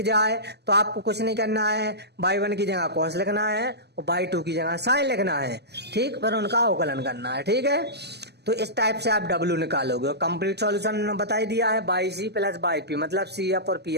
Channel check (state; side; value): late; left; 0.49 ms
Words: जाए तो आपको कुछ नहीं करना है, बाई 1 की जगह cos लिखना है और बाई 2 की जगह साइन लिखना है, ठीक, पर उनका अवकलन करना है, ठीक है। तो इस टाइप से आप W निकालोगे, और कंप्लीट सॉल्यूशन बता ही दिया है, by C plus by P, मतलब CF और